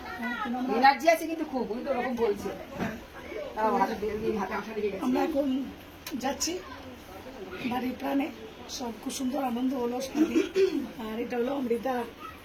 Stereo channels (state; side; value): identical; both; correlation 1.00